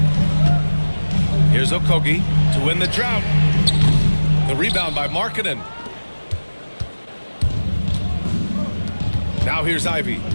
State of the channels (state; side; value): inverted; both; correlation -1.00